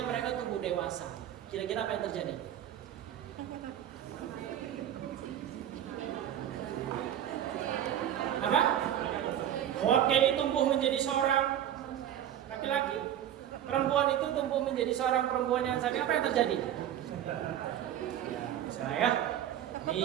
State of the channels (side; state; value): left; quieter; 10.9 dB